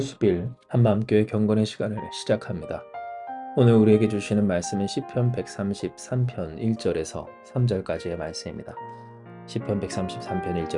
한마음교회 경건의 시간을 시작합니다. 오늘 우리에게 주시는 말씀은 시편 133편 1절에서 3절까지의 말씀입니다. 시편 133편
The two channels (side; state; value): both; identical; correlation 1.00